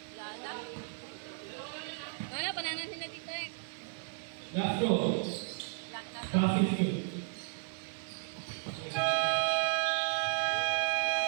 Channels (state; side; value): silent; left; digital silence